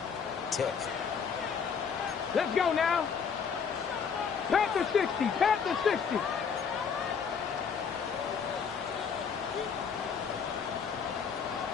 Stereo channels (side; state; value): right; quieter; 6.5 dB